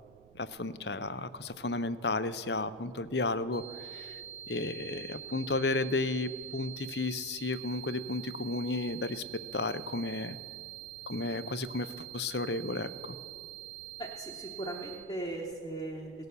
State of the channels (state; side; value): noise; right; rumble, 25 dB below the sound